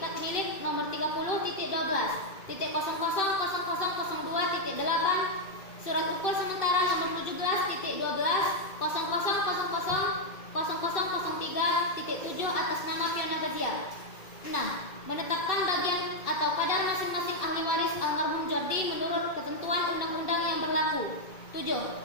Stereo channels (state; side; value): late; right; 2.6 ms